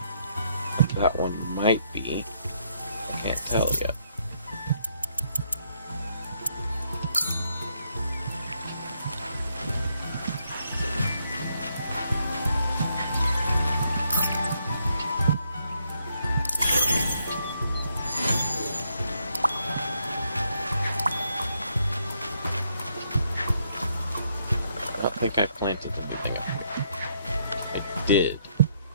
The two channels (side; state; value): both; inverted; correlation -0.74